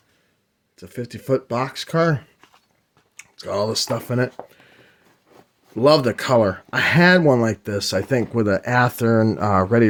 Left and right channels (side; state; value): both; identical; correlation 1.00